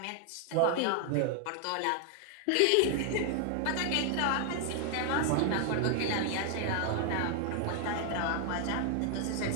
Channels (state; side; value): different; both; correlation 0.00